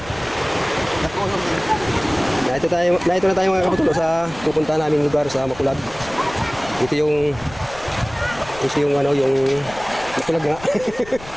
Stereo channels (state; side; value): noise; left; rumble, 18 dB below the sound